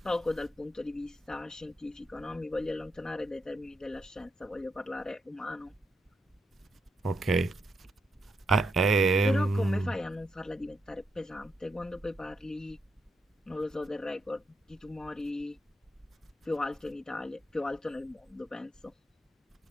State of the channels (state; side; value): normal; both; correlation 0.81